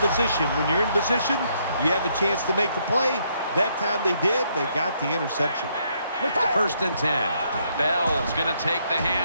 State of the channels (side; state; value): both; inverted; correlation -0.73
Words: position. When you're in position, you have a chance to make the play. That time they did. They got the interception. First and 10. Bell's going to take the